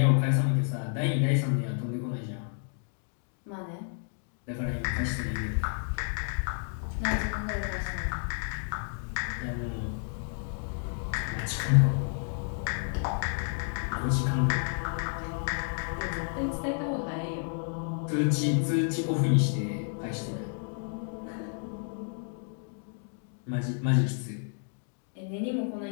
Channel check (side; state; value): right; silent; 57 dB below the other